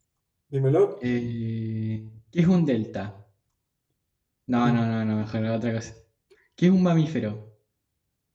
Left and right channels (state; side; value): identical; both; correlation 1.00